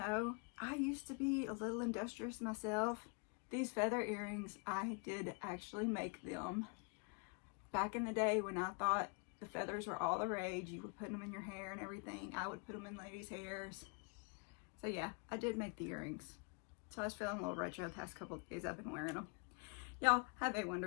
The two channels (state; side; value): quieter; right; 34.4 dB